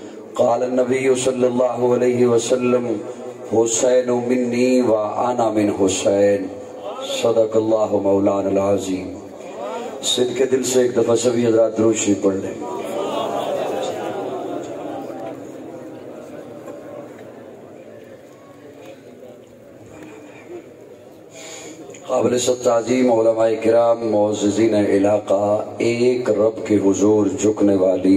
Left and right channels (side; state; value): both; identical; correlation 1.00